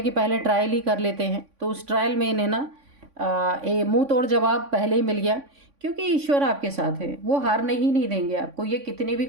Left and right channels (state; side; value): late; left; 3.5 ms